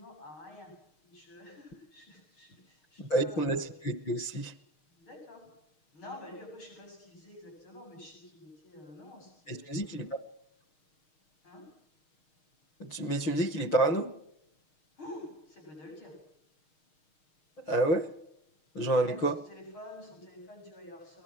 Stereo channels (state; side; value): late; right; 6.4 ms